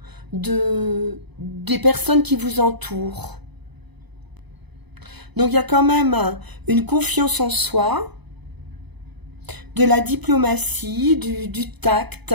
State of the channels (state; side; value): late; left; 0.99 ms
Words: des personnes qui vous entourent. Donc il y a quand même une confiance en soi, de la diplomatie, du tact